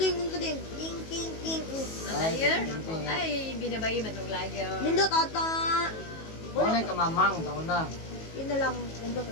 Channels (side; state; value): right; late; 19 ms